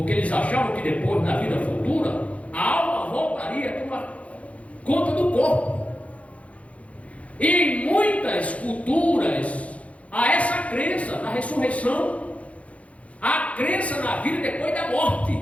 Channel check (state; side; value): late; right; 0.065 ms